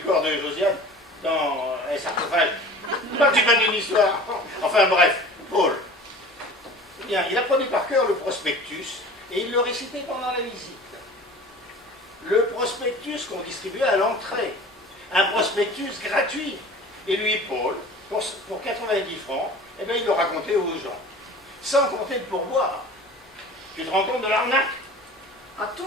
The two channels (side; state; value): both; normal; correlation 0.42